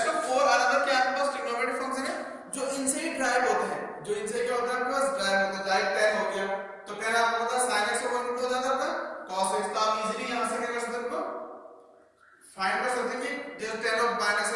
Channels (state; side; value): identical; both; correlation 1.00